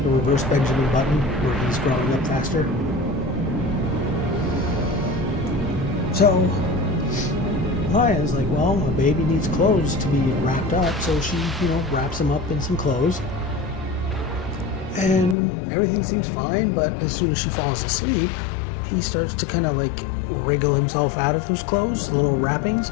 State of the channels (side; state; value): right; drops out; at 15.4 s